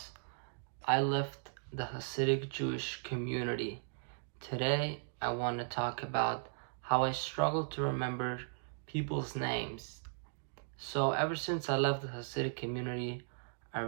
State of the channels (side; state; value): left; silent; digital silence